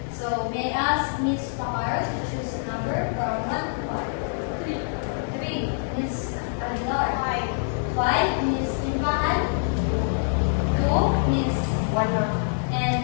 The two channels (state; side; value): silent; right; 60 dB below the other